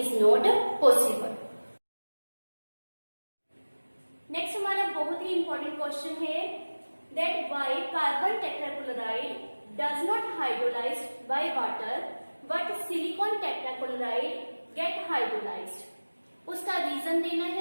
not possible. Next हमारा बहुत ही इंपॉर्टेंट क्वेश्चन है that why carbon tetrachloride does not hydrolyse by water but silicon tetrachloride get hydrolysed. उसका रीजन देना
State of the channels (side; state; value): both; inverted; correlation -1.00